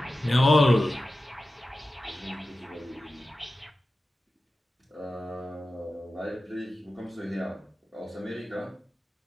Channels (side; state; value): both; normal; correlation 0.94